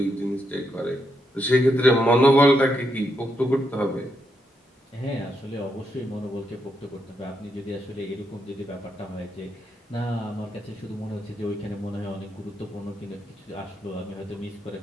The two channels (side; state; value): both; normal; correlation 0.81